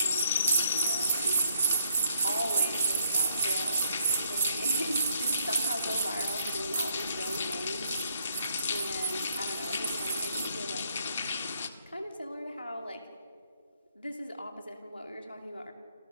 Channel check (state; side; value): inverted; both; correlation -0.70